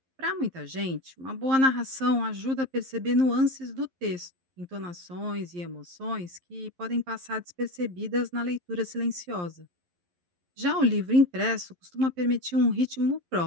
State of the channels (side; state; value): left; late; 11 ms